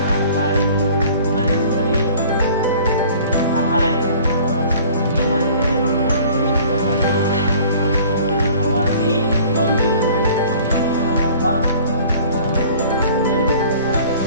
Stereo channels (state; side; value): inverted; both; correlation -0.50